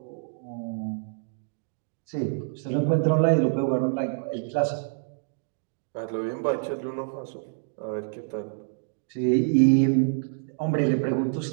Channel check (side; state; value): left; silent; digital silence